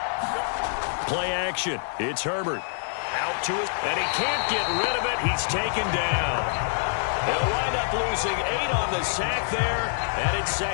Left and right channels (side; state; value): right; silent; digital silence